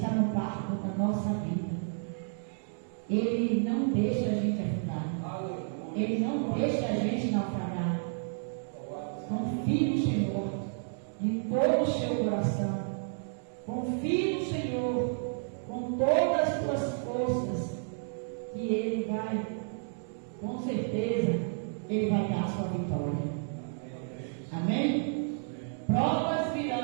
no barco da nossa vida. Ele não deixa a gente afundar. Ele não deixa a gente naufragar. Confie no Senhor de todo o seu coração. Confie no Senhor com todas as tuas forças, que Ele vai, com certeza, Ele vai dar a sua vitória. Amém? Provas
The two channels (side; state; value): left; silent; digital silence